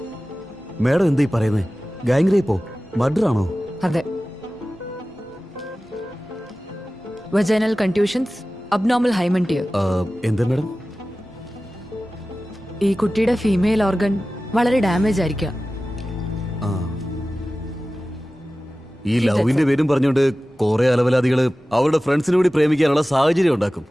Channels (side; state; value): both; normal; correlation 0.96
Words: മാഡം എന്താ ഈ പറയുന്നത്? ഗാങ് റേപ്പോ മർഡർ ആണോ? അതെ. Vaginal contusions, abnormal hymen tear. എന്താ മാഡം? ഈ കുട്ടിയുടെ ഫീമെയിൽ ഓർഗൻ വളരെ ഡാമേജ് ആയിരിക്കാം. ഈ ലവിന്റെ പേരും പറഞ്ഞുകൊണ്ട് കുറെ അലവലാദികള് അവരുടെ ഫ്രണ്ട്സിനെ കൂടി പ്രേമിക്കാനുള്ള സാഹചര്യം ഉണ്ടാക്കും.